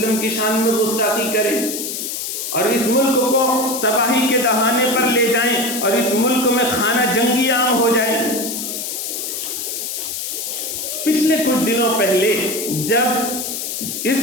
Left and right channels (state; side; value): noise; left; hiss, 4 dB below the sound